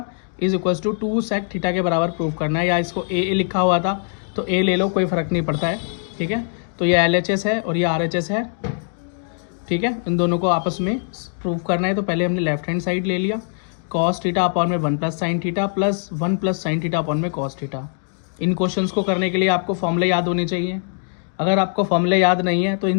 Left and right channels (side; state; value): right; silent; digital silence